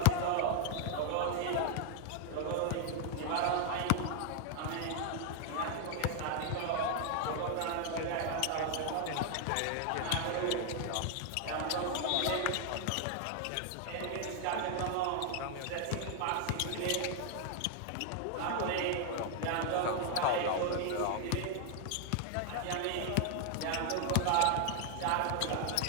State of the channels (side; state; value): both; different; correlation 0.00